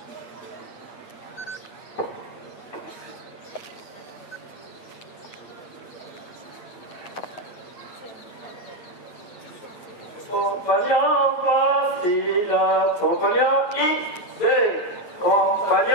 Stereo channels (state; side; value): late; right; 8.9 ms